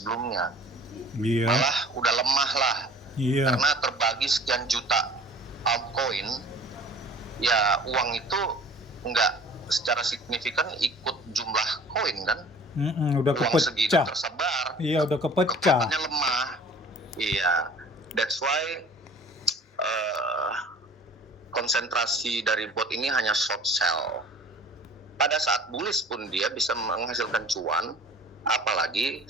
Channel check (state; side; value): normal; both; correlation 0.47